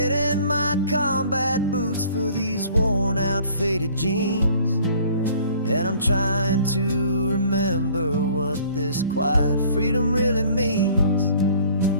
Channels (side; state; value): both; inverted; correlation -0.53